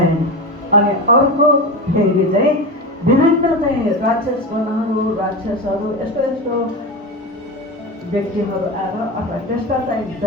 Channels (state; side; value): normal; both; correlation 0.22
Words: अनि अर्को फेरि चाहिँ विभिन्न चाहिँ राक्षसगणहरू, राक्षसहरू, यस्तो यस्तो व्यक्तिहरू आएर अथवा त्यस्ता चाहिँ